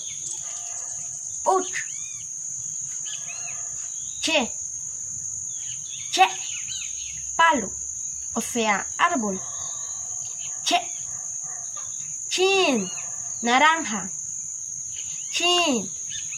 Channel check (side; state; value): both; identical; correlation 1.00